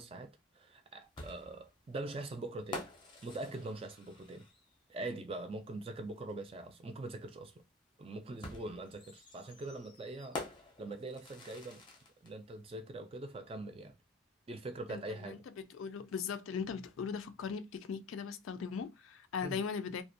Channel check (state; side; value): normal; both; correlation 0.39